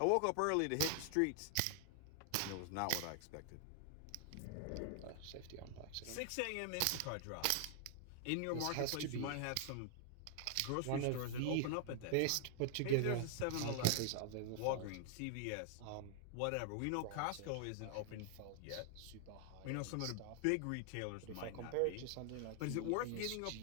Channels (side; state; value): both; different; correlation 0.00